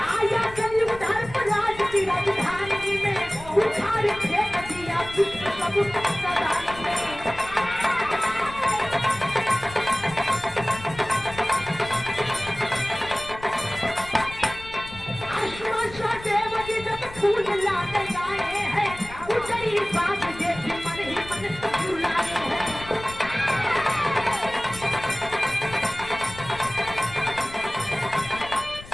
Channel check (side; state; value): left; noise; rumble, 16 dB below the sound